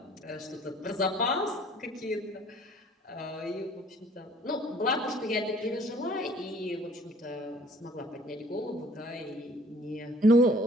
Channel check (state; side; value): normal; both; correlation 0.55